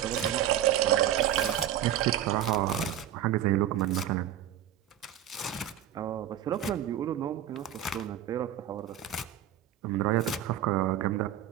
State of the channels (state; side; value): quieter; left; 11.1 dB